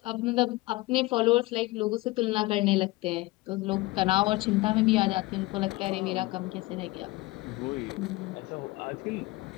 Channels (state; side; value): quieter; right; 20.6 dB